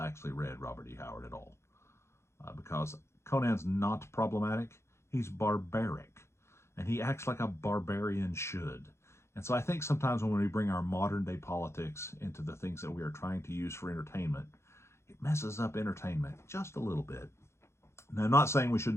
read Robert E. Howard at all. Because Conan's not problematic. He's barbaric. And he acts like a barbarian should. And so I think sometimes when we bring our modern day politics into the things that we are trying to use for entertainment, it messes up entertainment just a little bit. Now, I'm not saying we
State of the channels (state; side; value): late; right; 0.13 ms